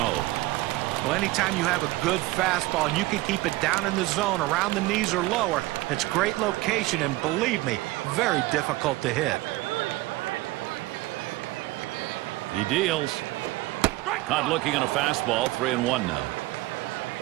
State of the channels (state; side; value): quieter; left; 19.2 dB